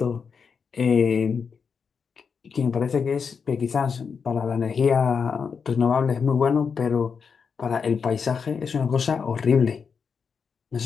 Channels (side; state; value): right; quieter; 6.0 dB